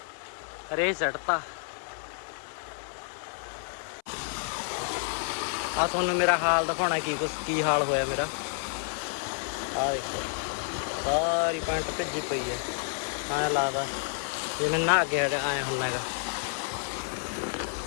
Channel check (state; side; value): silent; right; 58 dB below the other